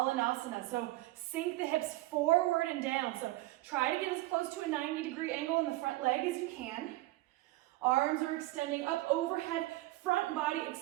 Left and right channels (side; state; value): left; quieter; 18.5 dB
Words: so sink the hips forward and down. So try to get as close to a 90-degree angle in the front leg as you can. Arms are extending up overhead, front body